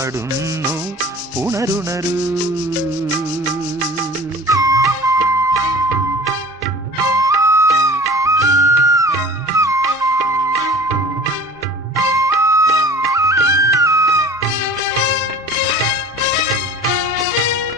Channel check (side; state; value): both; normal; correlation 0.41